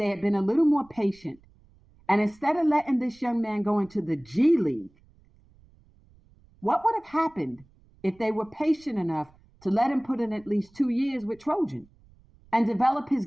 had been a little more patient and instead of letting this young man go into the G League, what would have happened if they were patient enough to let him put in at least 2 years with Trojan and develop his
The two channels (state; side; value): noise; right; rumble, 29 dB below the sound